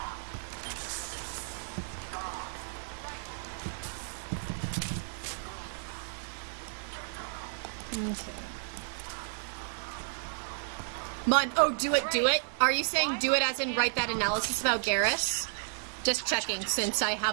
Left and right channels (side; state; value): left; silent; 55 dB below the other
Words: Okay. Mon, oh, do it. Are you saying do it as in write that analysis about Garrus? Just checking, since I